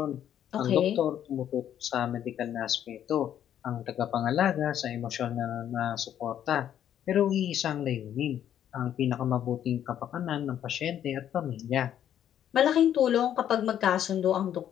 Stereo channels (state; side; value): quieter; right; 10.3 dB